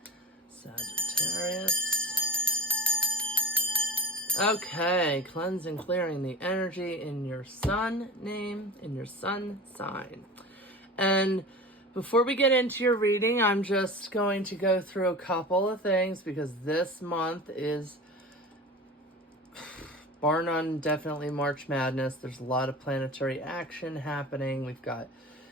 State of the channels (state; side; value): normal; both; correlation 0.32